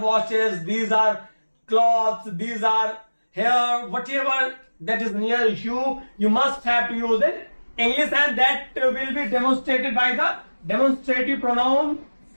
watches, these are cloths, these are hair, whatever that is near you, you must have to use it English, and that will be demonstrated by the demonstrative pronoun,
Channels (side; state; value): both; inverted; correlation -1.00